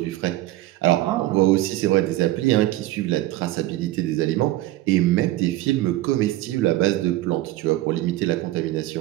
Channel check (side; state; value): left; quieter; 16.2 dB